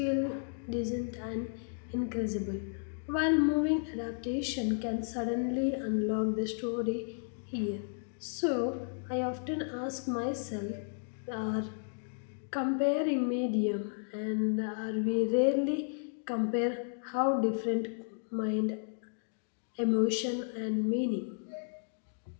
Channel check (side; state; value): right; silent; digital silence